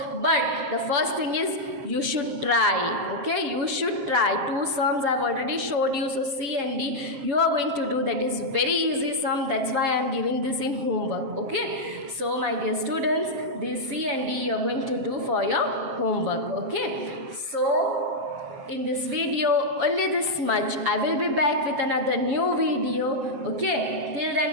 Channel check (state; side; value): late; left; 7.5 ms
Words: but the first thing is you should try. Okay, you should try. 2 sums I have already showed you. So C and D you are going to do. That is very easy sum. That's why I am giving this in homework. Okay, so my dear students, this C and D you are going to do for your homework. Okay, so in this video only this much. I will be back with another new video. Okay, till